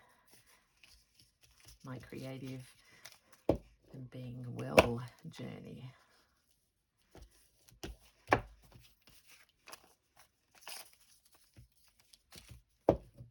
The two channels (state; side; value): identical; both; correlation 1.00